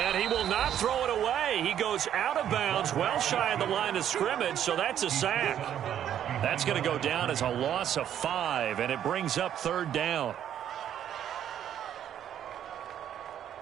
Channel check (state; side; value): quieter; left; 10.2 dB